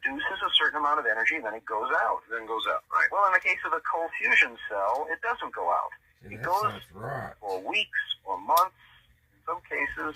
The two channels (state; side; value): identical; both; correlation 1.00